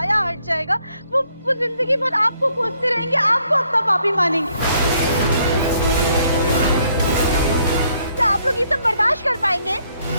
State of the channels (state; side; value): inverted; both; correlation -0.69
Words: हट जाएगा, वो जिंदगी भर आपको कोसते रहेंगे, आपको अपना पापी मानेंगे। क्या आप लोग ये सब बर्दाश्त कर पाएंगे?